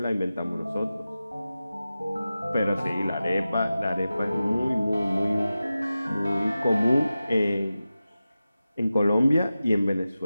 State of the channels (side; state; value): both; inverted; correlation -0.94